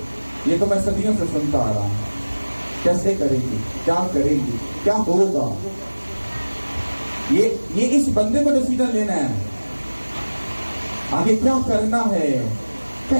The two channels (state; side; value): inverted; both; correlation -1.00